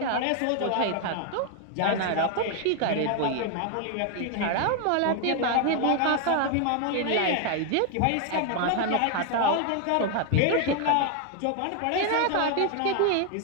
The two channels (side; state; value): both; different; correlation 0.01